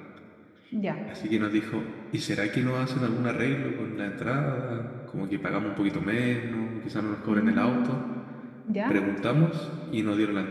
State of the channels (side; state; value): both; identical; correlation 1.00